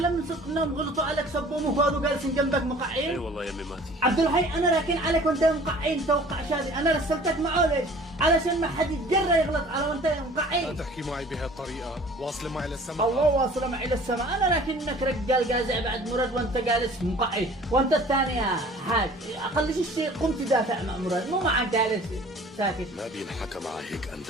من صدق انهم غلطوا عليك سبوا وهذا جالسين جنبك مقعين؟ اي والله يا امي ماتي. عبد الحي انا راكن عليك وانت مقعين توقع شادي، انا رسلتك معه ليش؟ علشان ما حد يتجرأ يغلط على وانت لا مقعين. تحكي معي بهالطريقة، واصل معي للسماء. الله واصله معي للسماء، انا لكنك رجال جازع بعد مراد وانت جالس مقعد، وانت الثاني يا حاج اقل شيء قمت تدافع مع مراد مو معك جالس ساكت. ما بينحكى مع هيك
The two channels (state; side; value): normal; both; correlation 0.48